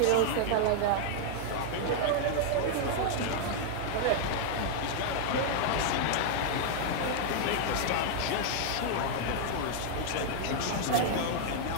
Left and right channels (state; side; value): different; both; correlation 0.00